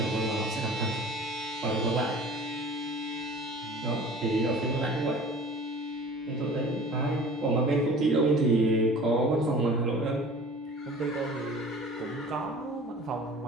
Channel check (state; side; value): normal; both; correlation 0.44